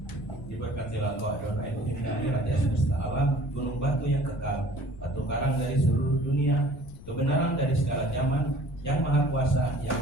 Diberkatilah engkau Adonai Elohim kami, Raja semesta alam, gunung batu yang kekal, batu karang dari seluruh dunia, kebenaran dari segala zaman, yang maha kuasa, yang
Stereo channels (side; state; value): left; noise; rumble, 16 dB below the sound